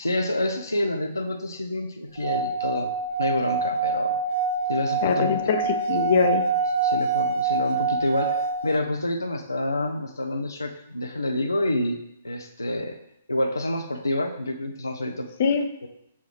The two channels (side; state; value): both; inverted; correlation -0.55